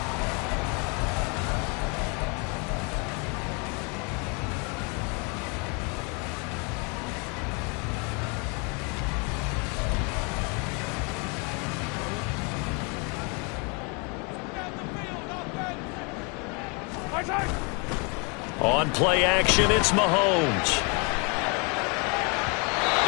On play action, it's Mahomes.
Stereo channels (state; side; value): quieter; right; 32.7 dB